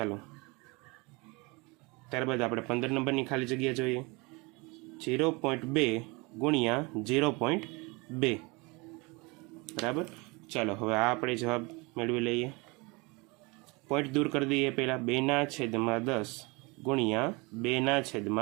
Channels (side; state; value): left; quieter; 26.9 dB